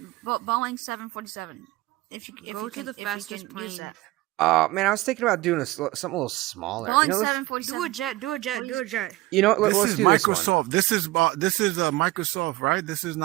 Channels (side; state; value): left; quieter; 19.0 dB